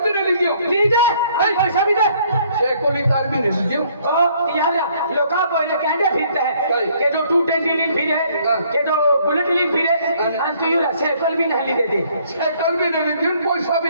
भी नहीं लियो लीजिए पैसा भी दे शेकोली तार भी नहीं लियो यार लोका बोले कहने फिरते हैं के जो 220 लिन फिरे के जो बुलेट लिन फिरे अन तो यूरा शेकल भी नहीं देते शेकल भी नहीं दियो पैसा भी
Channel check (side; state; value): both; inverted; correlation -0.63